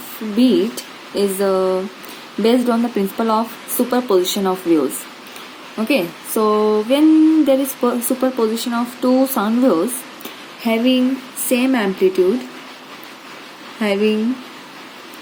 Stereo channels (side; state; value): both; identical; correlation 1.00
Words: beat is based on the principle of superposition of waves. Okay, so when there is superposition of two sound waves having same amplitude